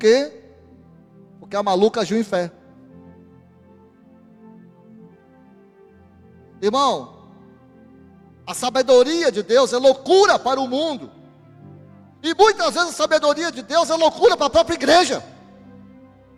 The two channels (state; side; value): identical; both; correlation 1.00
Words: Porque a maluca agiu em fé. Irmão, a sabedoria de Deus é loucura para o mundo. E muitas vezes a sabedoria de Deus é loucura para a própria igreja.